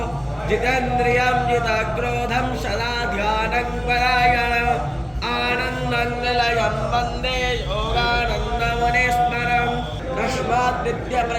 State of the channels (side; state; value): both; identical; correlation 1.00